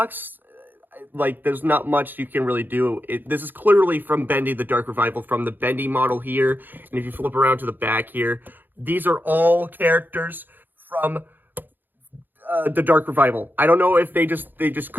Like, there's not much you can really do. This is clearly from Bendy, the Dark Revival, from the Bendy model here. And if you flip around to the back here, these are all characters from the Dark Revival. I don't know if they just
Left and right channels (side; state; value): left; late; 0.091 ms